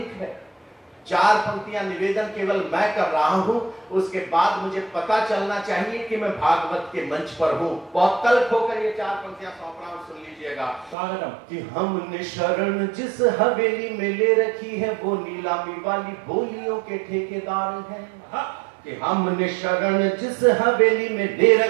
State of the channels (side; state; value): left; drops out; at 11.0 s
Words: है। 4 पंक्तियां निवेदन केवल मैं कर रहा हूं, उसके बाद मुझे पता चलना चाहिए कि मैं भागवत के मंच पर हूं। बहुत तल्ख होकर ये 4 पंक्तियां सौंप रहा हूं, सुन लीजिएगा। कि हमने शरण जिस हवेली में ले रखी है वो नीलामी वाली बोलियों के ठेकेदार हैं। कि हमने शरण जिस हवेली में ले